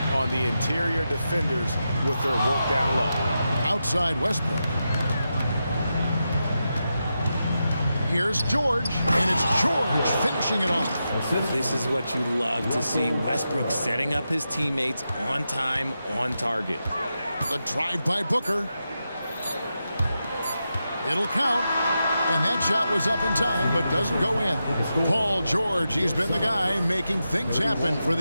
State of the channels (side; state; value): both; inverted; correlation -0.88